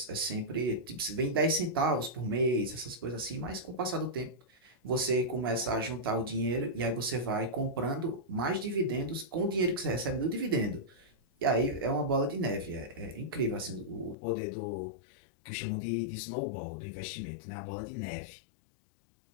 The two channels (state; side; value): drops out; right; at 14.2 s